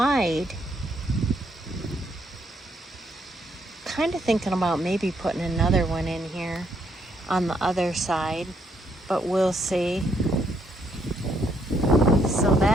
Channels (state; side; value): normal; both; correlation 0.73